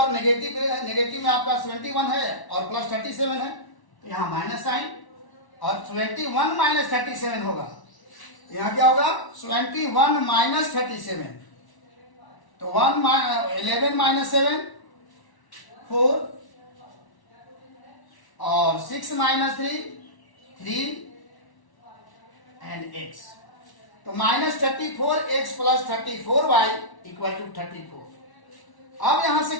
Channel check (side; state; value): right; late; 1.1 ms